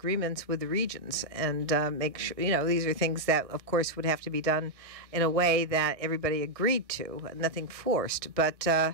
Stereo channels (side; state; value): left; late; 1.6 ms